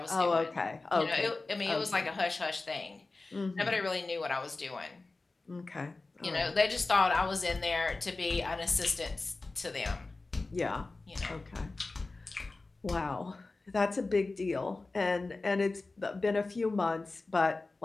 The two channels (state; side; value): quieter; right; 3.4 dB